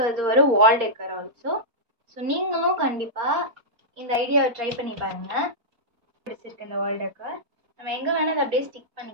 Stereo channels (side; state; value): left; late; 4.3 ms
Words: அது ஒரு வால் டெக்கர் ஆல்சோ. ஸோ நீங்களும் கண்டிப்பாக இந்த ஐடியாவை ட்ரை பண்ணி பாருங்கள். பிடிச்சிருக்கு இந்த வால் டெக்கர். நம்ம எங்கே வேணால் அதை அப்படியே ஸ்டிக்